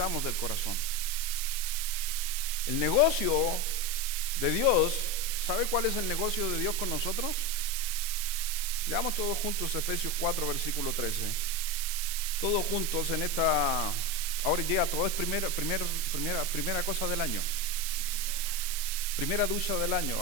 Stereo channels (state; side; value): noise; right; hiss, 2 dB below the sound